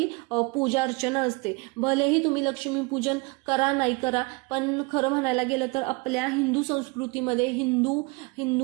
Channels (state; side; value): quieter; left; 27.5 dB